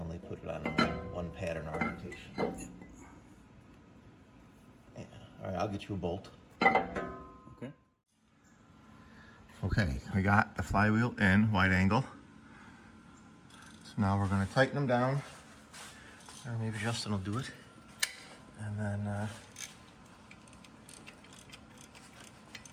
put it on one pattern orientation. Yeah. All right, I'll get you a bolt. Okay. Okay, we got the flywheel in, wide angle. So now we're gonna tighten them down, or maybe Justin will do it. And then I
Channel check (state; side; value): identical; both; correlation 1.00